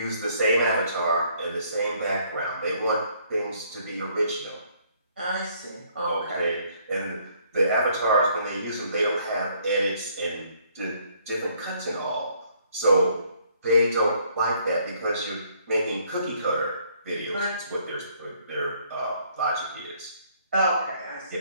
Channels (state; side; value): inverted; both; correlation -0.65